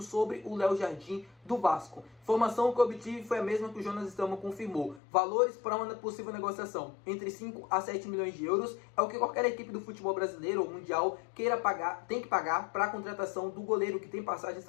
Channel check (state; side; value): drops out; right; at 5.0 s